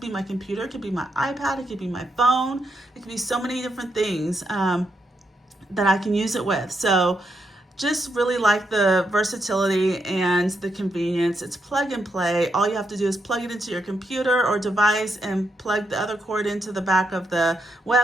my computer. It could be my iPad, it could be my phone, it could be so many different things that I can use it with. So just really like the versatility and the convenience. It's plug and play. All you have to do is plug it into your computer or device and plug the other cord into the back of the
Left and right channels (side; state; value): both; normal; correlation 0.80